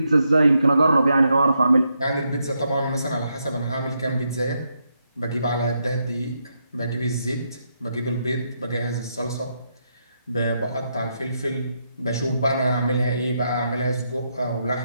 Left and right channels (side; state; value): both; inverted; correlation -0.81